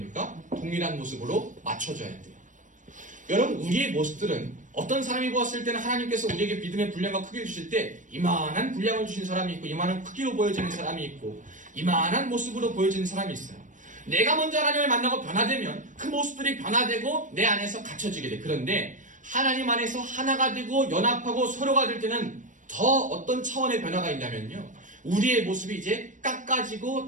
동일한 모습으로 맞춰져야 돼요. 여러분, 우리의 모습들은 어떤 사람이 보았을 때는 하나님께서 우리에게 믿음의 분량과 크기를 주실 때 이만한 분량을 주신 사람이 있고 이만한 크기로 보여지는 사람이 있고 이만한 모습으로 보여지는 사람이 있어요. 내가 먼저 하나님을 만나고 변화되면 그 모습들이 변화되고 내 안에서 갖춰지게 돼. 그런데 하나님 안에서 하나가 되고 연합하고 서로가 될 때는 더 어떤 차원의 변화가 있냐면요, 우리의 모습이 이제 깎아지고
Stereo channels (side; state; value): left; late; 0.37 ms